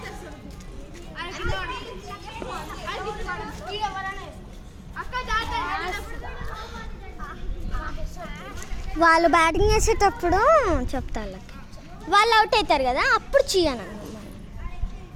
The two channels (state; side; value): identical; both; correlation 1.00